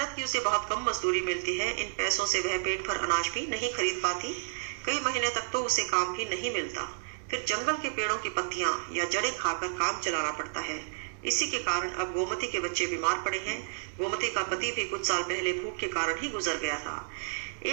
की उसे बहुत कम मजदूरी मिलती है। इन पैसों से वह पेट भर अनाज भी नहीं खरीद पाती। कई महीने तक तो उसे काम भी नहीं मिलता। फिर जंगल के पेड़ों की पत्तियां या जड़ें खाकर काम चलाना पड़ता है। इसी के कारण अब गोमती के बच्चे बीमार पड़े हैं। गोमती का पति भी कुछ साल पहले भूख के कारण ही गुजर गया था।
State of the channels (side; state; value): left; silent; 57 dB below the other